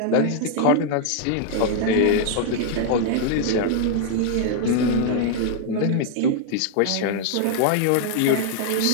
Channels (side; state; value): both; different; correlation 0.00